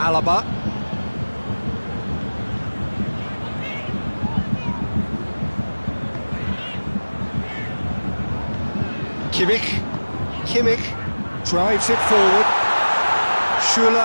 Kimmich drives it forward.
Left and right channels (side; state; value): both; inverted; correlation -1.00